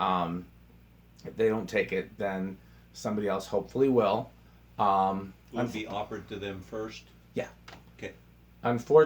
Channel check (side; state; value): both; identical; correlation 1.00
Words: if they don't take it, then somebody else hopefully will. Will it be offered to them first? Yeah. Okay.